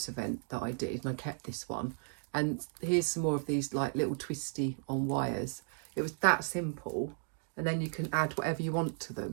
event that I did, and I kept this one. And here's some more of these like little twisty on wires. It was that simple, and then you can add whatever you want to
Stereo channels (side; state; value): left; silent; 55 dB below the other